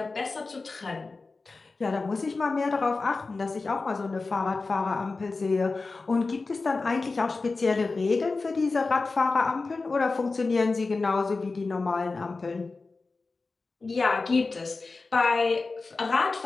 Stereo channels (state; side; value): quieter; right; 3.8 dB